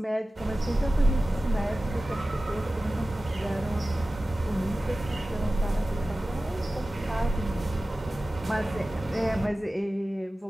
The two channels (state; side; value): normal; both; correlation 0.96